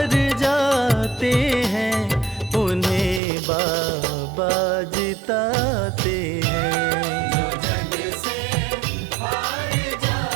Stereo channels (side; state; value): left; drops out; at 3.2 s